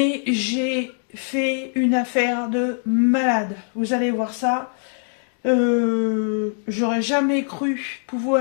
j'ai fait une affaire de malade. Vous allez voir ça. J'aurais jamais cru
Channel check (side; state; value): right; silent; digital silence